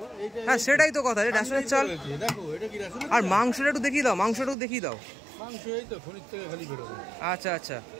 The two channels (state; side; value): drops out; left; at 4.5 s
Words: হ্যাঁ সেটাই তো কথা, রেশনের চাল। দেখো এটা কি রেশনের? আর মাংসটা একটু দেখিয়ে দাও, মাংসটা দেখিয়ে দাও। মাংস এই তো খনির থেকে খালি বেরোবে। আচ্ছা আচ্ছা,